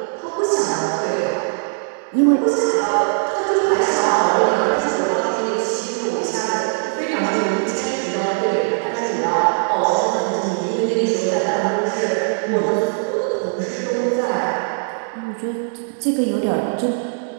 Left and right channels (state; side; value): silent; left; digital silence